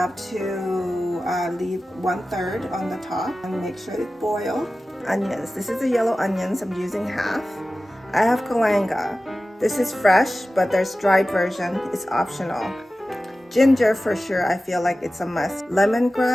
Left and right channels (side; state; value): both; normal; correlation 0.95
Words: to leave 1/3 on the top and make sure it boils. Onions. This is the yellow onions. I'm using half. I have galangal. This is fresh, but there's dried version. It's optional. Ginger for sure. I feel like it's a must.